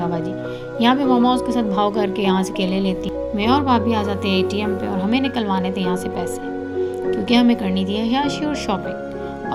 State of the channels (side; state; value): both; identical; correlation 1.00